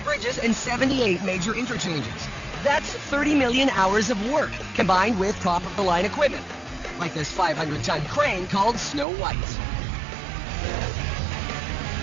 bridges, and 78 major interchanges. That's 30 million hours of work, combined with top-of-the-line equipment, like this 500-ton crane called Snow White.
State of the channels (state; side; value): drops out; left; at 9.1 s